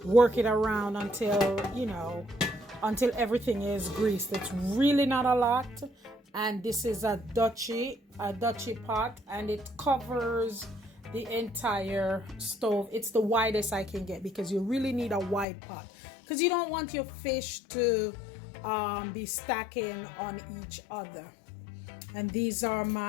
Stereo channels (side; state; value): right; drops out; at 15.5 s